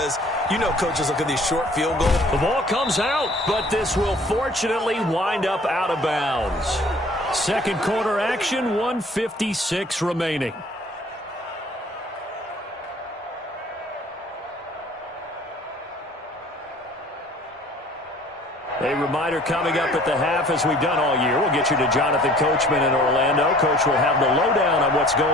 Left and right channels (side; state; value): both; normal; correlation 0.52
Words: you know coaches look at these short field goals. The ball comes out, but this will fortunately wind up out of bounds. Second quarter action, 1:56 remaining. A reminder coming up at the half, as we've done all year. We'll get you to Jonathan Coachman in Orlando. Coach will have the lowdown on what's